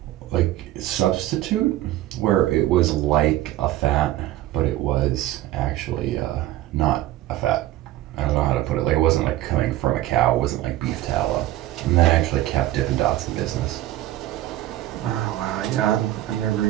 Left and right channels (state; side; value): quieter; left; 14.8 dB